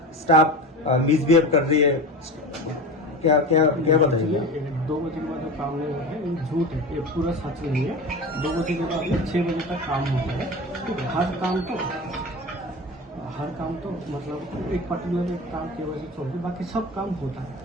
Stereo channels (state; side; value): normal; both; correlation 0.29